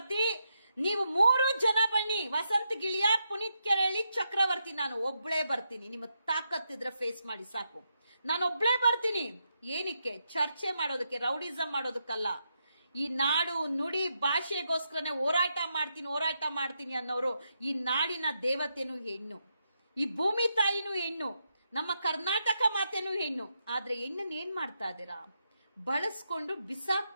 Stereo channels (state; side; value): inverted; both; correlation -0.83